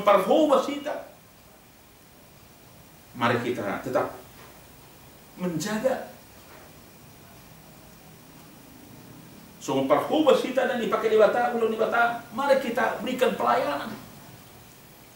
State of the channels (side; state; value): both; identical; correlation 1.00